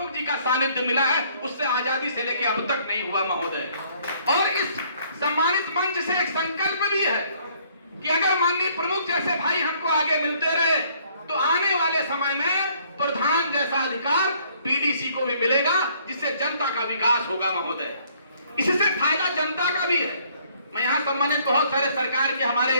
जी का सानिध्य मिला है, उससे आजादी से लेकर अब तक नहीं हुआ महोदय। और इस सम्मानित मंच से एक संकल्प भी है कि अगर माननीय प्रमुख जैसे भाई हमको आगे मिलते रहे तो आने वाले समय में प्रधान जैसा अधिकार बीडीसी को भी मिलेगा, जिससे जनता का विकास होगा महोदय। इससे फायदा जनता का भी है। मैं यहाँ सम्मानित बहुत सारे सरकार के हमारे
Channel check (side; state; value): both; inverted; correlation -0.62